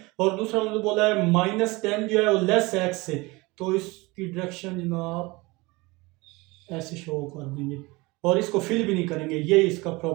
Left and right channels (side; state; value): left; quieter; 23.5 dB